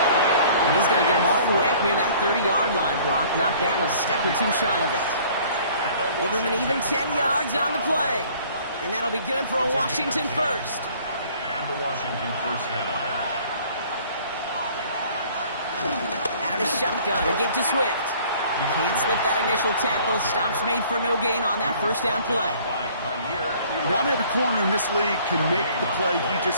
he's going to get him all the way up near that 30-yard line, Brock. Knocked down a step or two shy of it. Give him an even 10 yards on the play. And that'll be good for a Washington first. And the Washington first down. Out of the shotgun and give to Swift. Can't slip that initial tackle. Stops made for no gain on that first down play. Not every corner in this league can make the play he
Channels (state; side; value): inverted; both; correlation -0.54